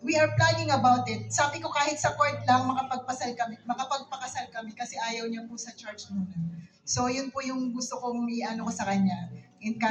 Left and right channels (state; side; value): identical; both; correlation 1.00